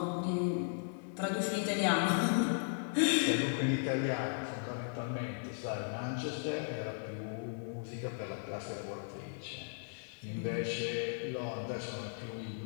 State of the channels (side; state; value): right; silent; 53 dB below the other